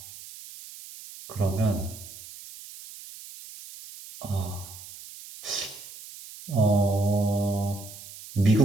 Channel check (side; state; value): right; noise; hiss, 16 dB below the sound